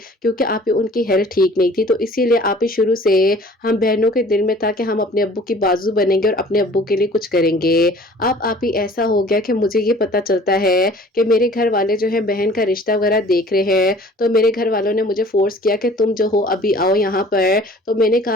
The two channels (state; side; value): normal; both; correlation 0.50